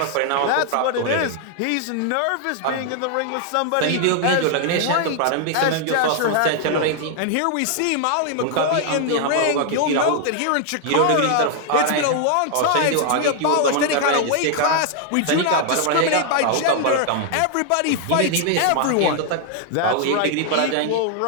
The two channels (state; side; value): different; both; correlation 0.00